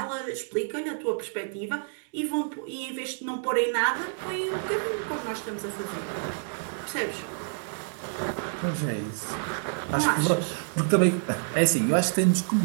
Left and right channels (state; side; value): silent; left; digital silence